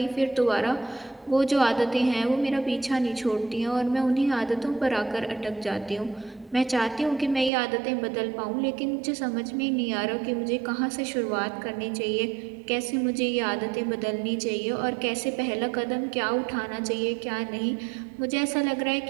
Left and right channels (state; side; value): drops out; left; at 7.5 s